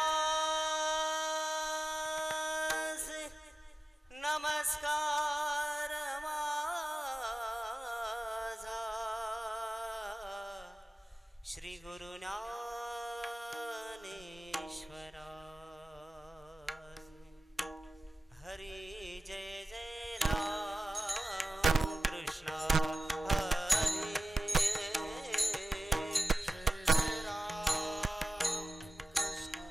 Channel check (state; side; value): normal; both; correlation 0.95